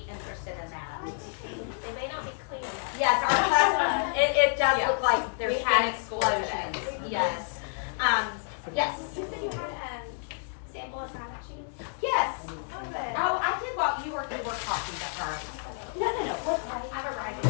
interested in that. They may not be clean yet. Yes, our classroom, it does Yeah. look like there's We had been it school today. explosions. Yes. Yes. You said you had sample assignment sheets? Yes. Oh, good. Oh, I did while you were talking to her. No. What? I have a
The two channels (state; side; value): silent; right; 58 dB below the other